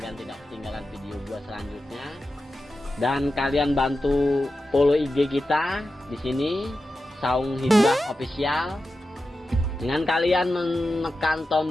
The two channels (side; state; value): both; normal; correlation 0.92